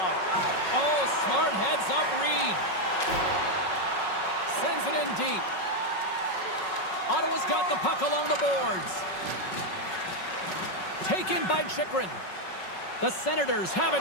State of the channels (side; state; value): right; late; 5.4 ms